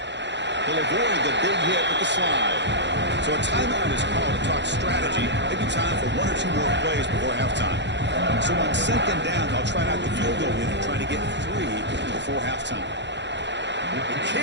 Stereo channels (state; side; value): late; left; 0.52 ms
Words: He'll avoid the big hit with the slide. So a timeout is called to talk strategy. Maybe time for 1 or 2 more plays before halftime. So on 2nd down, they'll try out the field goal unit, trying to get 3 before halftime. The